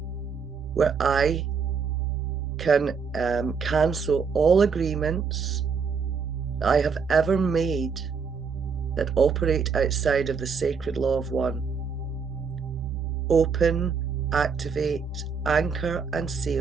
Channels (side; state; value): left; quieter; 5.7 dB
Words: where I can cancel all agreements I have ever made that operate outside of the sacred law of one. Open, activate, anchor, and